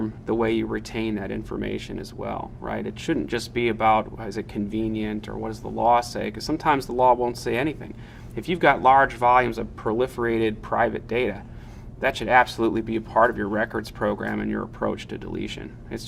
the way you retain that information as well, right? It shouldn't just be about, is it convenient or what does the law say? Because sometimes the law won't say anything. If you've got large volumes of proliferated private data, that should absolutely be a part of your records program and your approach to deletion. It's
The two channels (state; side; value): identical; both; correlation 1.00